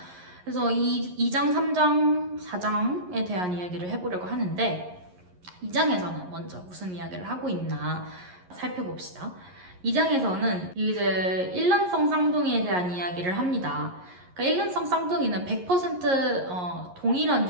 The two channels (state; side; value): late; left; 11 ms